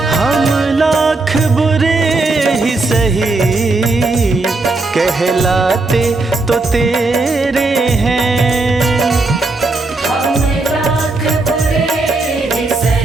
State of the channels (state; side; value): quieter; left; 3.3 dB